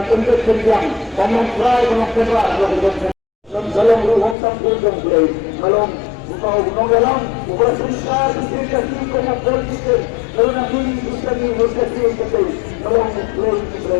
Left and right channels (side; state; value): right; drops out; at 4.4 s